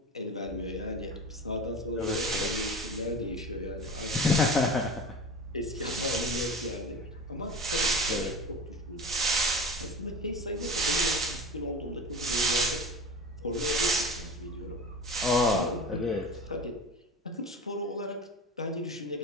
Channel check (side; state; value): both; normal; correlation 0.34